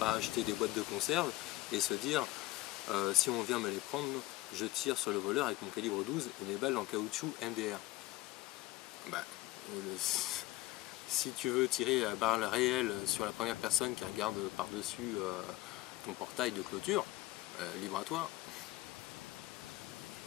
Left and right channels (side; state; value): right; quieter; 18.8 dB